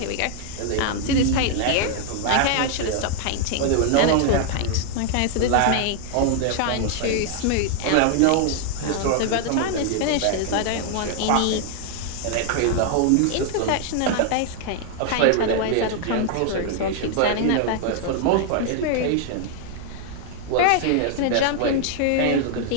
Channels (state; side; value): different; both; correlation 0.00